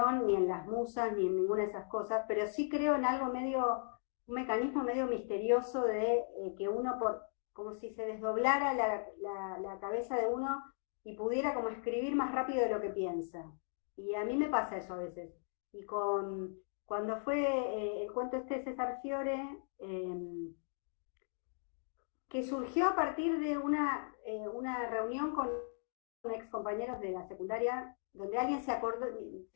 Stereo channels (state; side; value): silent; right; digital silence